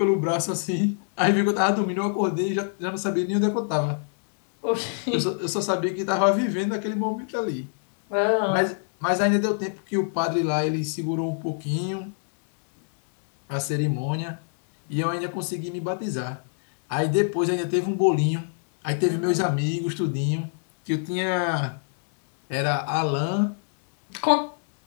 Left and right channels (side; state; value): right; silent; digital silence